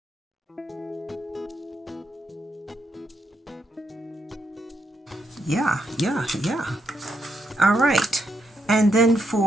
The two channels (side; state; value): both; normal; correlation 0.79